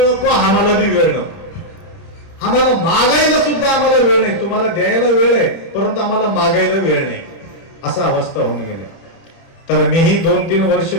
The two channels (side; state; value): right; late; 30 ms